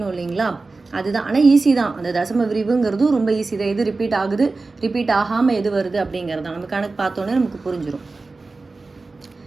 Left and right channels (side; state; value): left; quieter; 3.7 dB